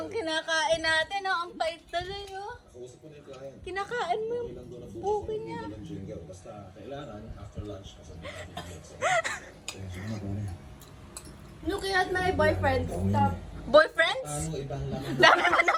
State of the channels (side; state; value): both; identical; correlation 1.00